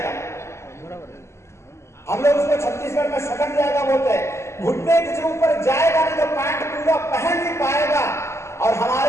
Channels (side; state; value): right; late; 0.13 ms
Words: हम लोग उसको छत्तीसगढ़ में सटक जाएगा बोलते हैं, घुटने के ऊपर जाएगा नहीं तो पैंट पूरा पहन नहीं पाएगा। और